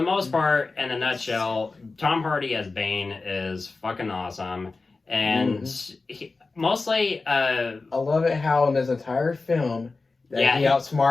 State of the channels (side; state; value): right; quieter; 3.8 dB